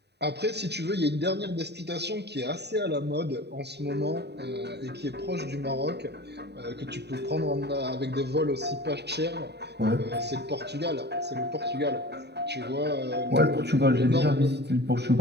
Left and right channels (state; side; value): late; left; 0.49 ms